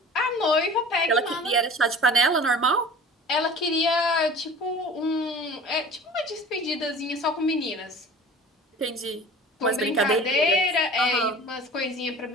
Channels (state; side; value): normal; both; correlation 0.42